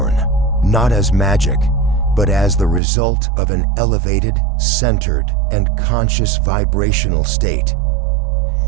not as magic, but as the result of an elevated, centered, and conscious vibrational state.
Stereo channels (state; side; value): drops out; left; at 2.8 s